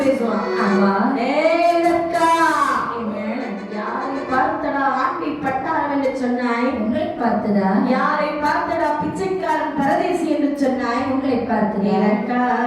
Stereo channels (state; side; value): identical; both; correlation 1.00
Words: பேசுவான். ஆமா ஏய் அக்கா, என்ன யாரை பார்த்தடா ஆண்டி பட்டாரம் என்று சொன்னாய்? உங்களை பார்த்ததா? யாரை பார்த்தடா பிச்சைக்காரன் பரதேசி என்று சொன்னாய்? உங்களை பார்த்ததா? அக்கா,